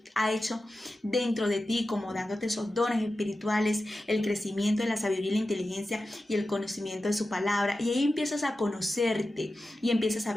ha hecho dentro de ti, como dándote esos dones espirituales, el crecimiento de la sabiduría y la inteligencia y el conocimiento de su palabra, y ahí empiezas a conocerte y empiezas a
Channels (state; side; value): normal; both; correlation 0.93